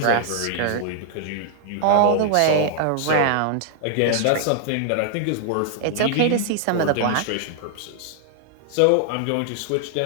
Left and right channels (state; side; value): different; both; correlation -0.01